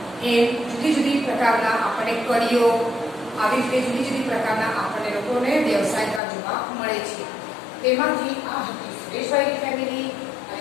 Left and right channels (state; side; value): drops out; right; at 6.2 s